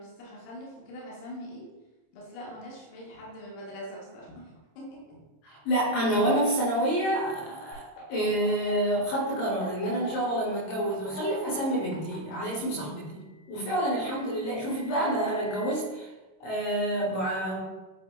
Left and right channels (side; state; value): right; late; 26 ms